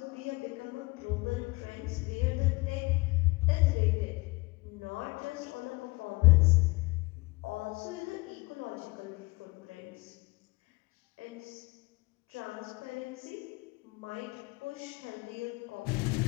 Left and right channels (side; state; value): right; quieter; 24.3 dB